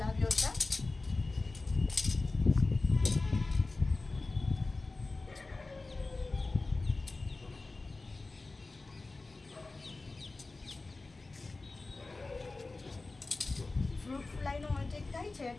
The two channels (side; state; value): right; quieter; 3.4 dB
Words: આવ્યો છે. ફ્રૂટ ફ્લાયનો અટેક થાય છે